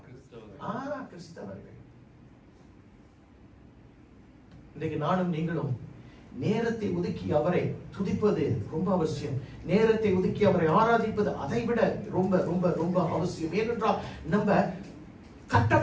கிறிஸ்தவர்கள். இன்றைக்கு நானும் நீங்களும் நேரத்தை ஒதுக்கி அவரை துதிப்பது ரொம்ப அவசியம். நேரத்தை ஒதுக்கி அவரை ஆராதிப்பது அதை விட ரொம்ப ரொம்ப ரொம்ப அவசியம். ஏனென்றால் நம்ம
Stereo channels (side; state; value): both; identical; correlation 1.00